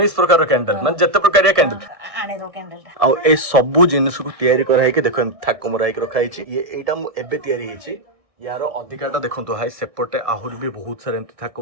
ପ୍ରକାର କ୍ୟାଣ୍ଡେଲ, ମାନେ ଯେତେ ପ୍ରକାରିଆ କ୍ୟାଣ୍ଡେଲ ଆଣିର କ୍ୟାଣ୍ଡେଲଟା। ଆଉ ଏ ସବୁ ଜିନିଷକୁ ତିଆରି କରାହେଇକି ଦେଖ ଥାକ ମରା ହେଇକି ରଖା ହେଇଛି। ଏଇଟା ମୁଁ ଏବେ ତିଆରି ହେଇଛି, ୟାର ଅଧିକାଟା ଦେଖନ୍ତୁ ଭାଇ, ସେପଟେ ଆହୁରି ବି ବହୁତ ସାରା ଏମିତି ଥାକ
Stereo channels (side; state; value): left; late; 1.6 ms